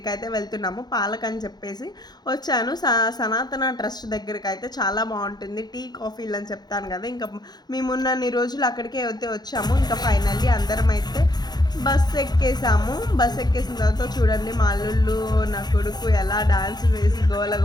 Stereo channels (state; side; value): late; right; 0.20 ms